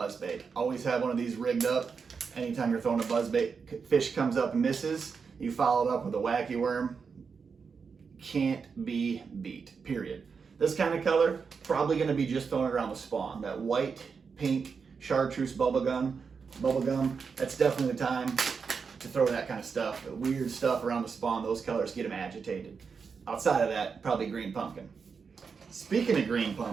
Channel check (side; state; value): left; quieter; 5.6 dB